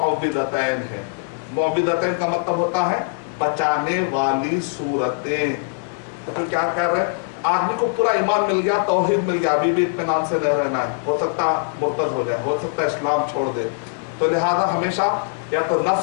है। मुअव्विदतैन का मतलब होता है बचाने वाली सूरतें। तो फिर क्या कह रहे हैं, आदमी को पूरा ईमान मिल गया, तौहीद मिल गया, अभी भी इत्मीनान से नहीं रहना है, हो सकता मुर्तद हो जाए, हो सकता है इस्लाम छोड़ दे। तो लिहाजा हमेशा या तो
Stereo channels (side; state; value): right; silent; 65 dB below the other